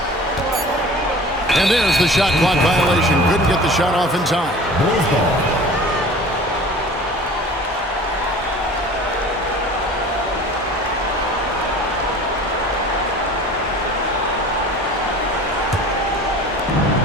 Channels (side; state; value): both; normal; correlation 0.42